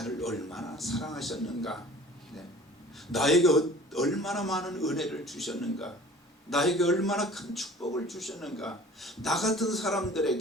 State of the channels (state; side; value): normal; both; correlation 0.46